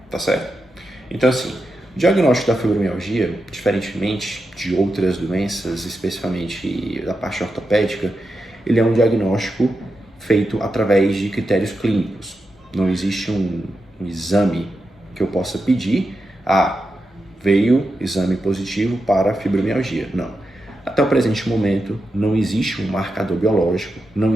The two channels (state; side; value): normal; both; correlation 0.88